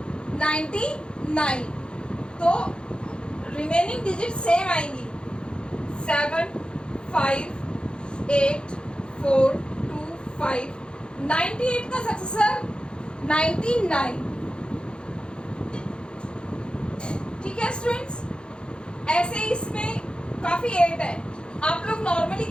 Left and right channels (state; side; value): late; right; 0.052 ms